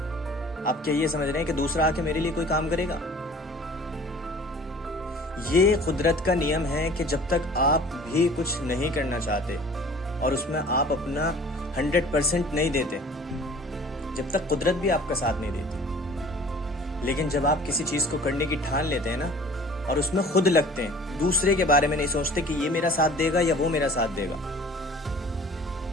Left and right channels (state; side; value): normal; both; correlation 0.47